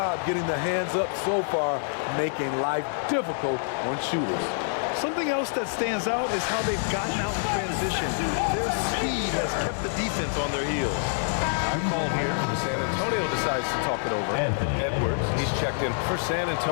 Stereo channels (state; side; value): silent; right; digital silence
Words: getting the hands up so far, making life difficult on shooters. Something else that stands out is how they've gotten out in transition. Their speed has kept the defense on their heels. I'm called here. San Antonio decides to talk it over. Edwards, he's checked in for San